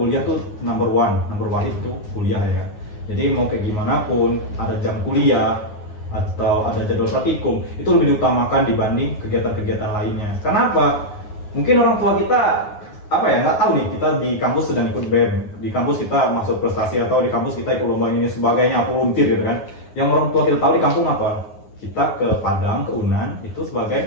tuh number one itu kuliah ya kan. Jadi mau kayak gimana pun ada jam kuliah atau ada jadwal praktikum itu lebih diutamakan dibanding kegiatan-kegiatan lainnya. Karena apa? Mungkin orang tua kita nggak tahu nih, kita di kampus sedang ikut BEM, di kampus kita masuk prestasi atau di kampus kita ikut lomba ini sebagainya, volunteer gitu kan. Yang orang tua kita tahu di kampung apa? Kita ke Padang, ke Unan itu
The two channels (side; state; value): right; late; 9.6 ms